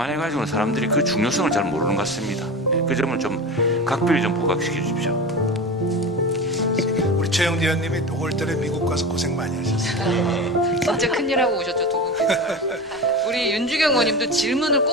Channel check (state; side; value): normal; both; correlation 0.28